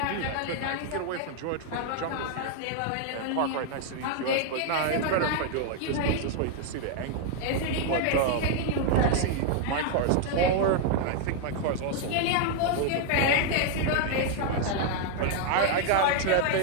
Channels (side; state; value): both; different; correlation 0.00